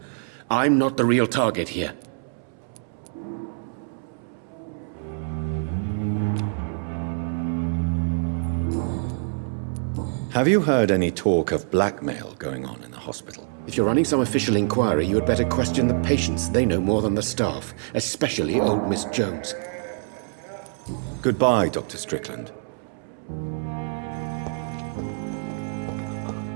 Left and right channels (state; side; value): silent; left; 61 dB below the other